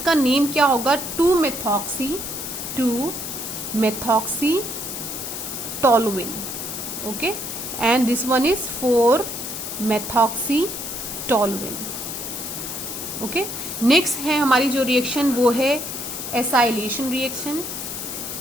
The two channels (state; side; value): noise; left; hiss, 6 dB below the sound